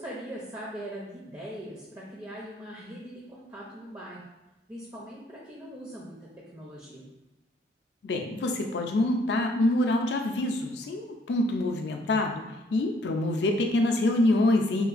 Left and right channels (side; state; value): both; normal; correlation 0.65